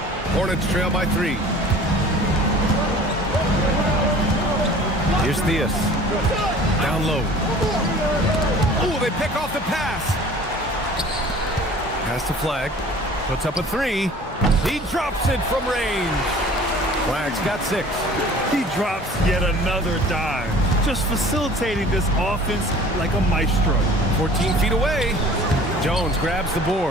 Hornets trail by 3. Here's Theus. Down low. Oh, they pick off the pass. Pass to Flag. Puts up a 3. He drops it from range. Flag's got 6. He drops yet another dive, just facilitating this offense like a maestro. 14 feet away. Jones grabs the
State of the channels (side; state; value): both; normal; correlation 0.47